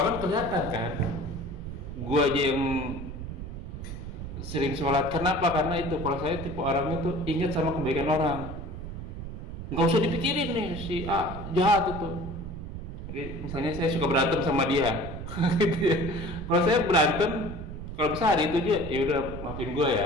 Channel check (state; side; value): noise; right; rumble, 9 dB below the sound